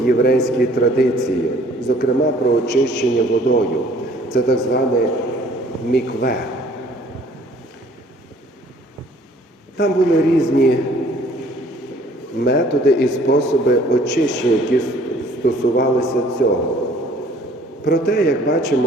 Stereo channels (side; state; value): both; normal; correlation 0.56